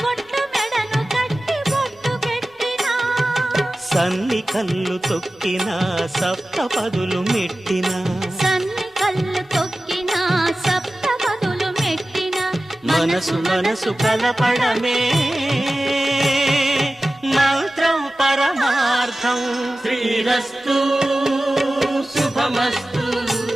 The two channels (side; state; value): both; normal; correlation 0.95